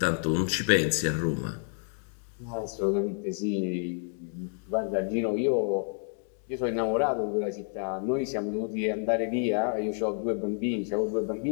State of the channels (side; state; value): right; silent; 58 dB below the other